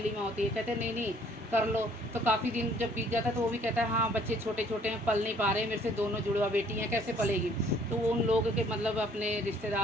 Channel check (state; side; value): normal; both; correlation 0.59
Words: माँ होती है। कहते नहीं नहीं कर लो। तो काफ़ी दिन जब बीत जाता है तो वो भी कहता है हाँ बच्चे छोटे छोटे हैं, पल नहीं पा रहे, मेरे से दोनों जुड़वा बेटी हैं, कैसे पलेगी? तो वो उन लोगों के मतलब अपने